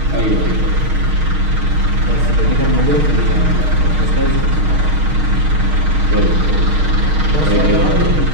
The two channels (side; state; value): left; late; 6.5 ms